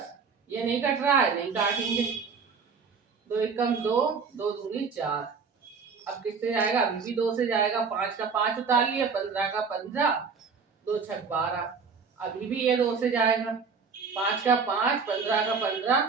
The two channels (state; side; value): quieter; left; 5.5 dB